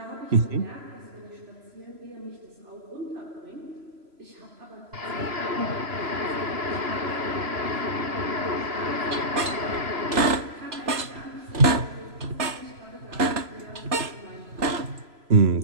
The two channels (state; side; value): late; left; 3.0 ms